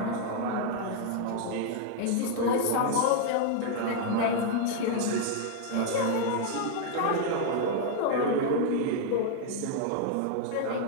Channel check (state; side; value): different; both; correlation -0.01